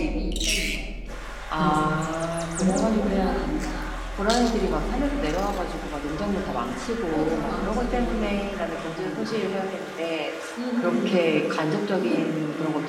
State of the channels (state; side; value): identical; both; correlation 1.00